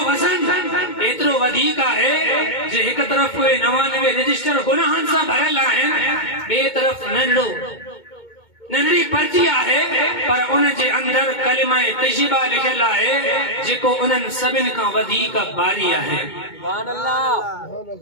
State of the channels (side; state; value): right; late; 2.2 ms